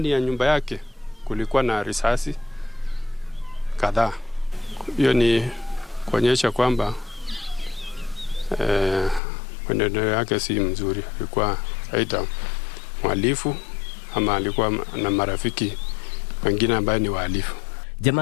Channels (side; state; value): right; drops out; at 9.2 s